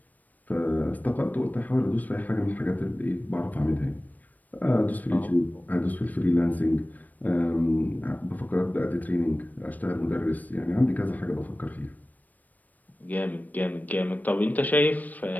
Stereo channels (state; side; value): late; right; 0.081 ms